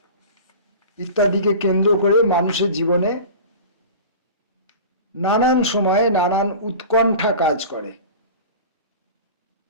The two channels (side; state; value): both; inverted; correlation -0.36